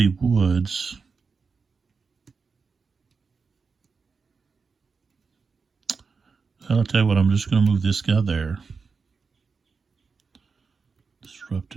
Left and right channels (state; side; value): quieter; left; 5.0 dB